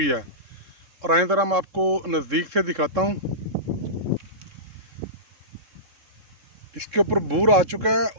है। और आए ज़रा मैं आपको नज़दीक से दिखाता हूँ। इसके ऊपर बूर आ चुका है,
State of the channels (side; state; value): left; late; 3.7 ms